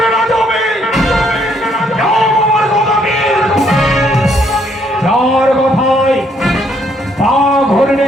কথায় পা ঘুরলে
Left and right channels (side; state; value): both; normal; correlation 0.69